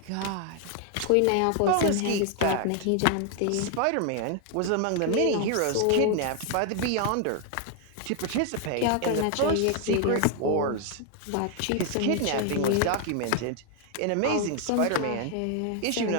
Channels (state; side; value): different; both; correlation 0.00